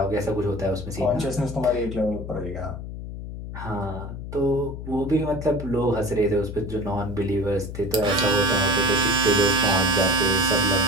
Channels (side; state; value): left; noise; hum, 9 dB below the sound